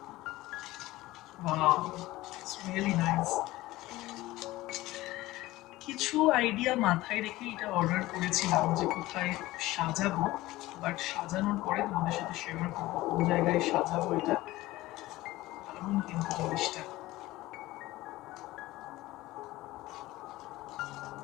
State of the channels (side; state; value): right; quieter; 17.9 dB